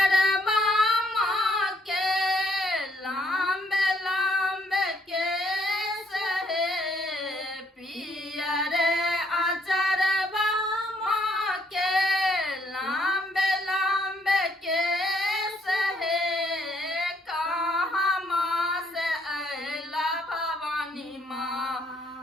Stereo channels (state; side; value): normal; both; correlation 0.69